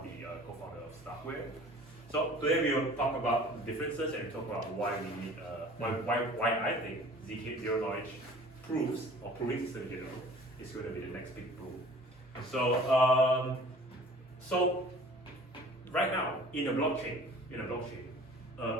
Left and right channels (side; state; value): both; normal; correlation 0.48